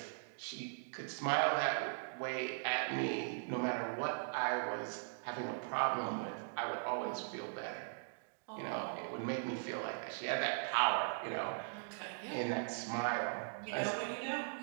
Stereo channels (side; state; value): left; silent; digital silence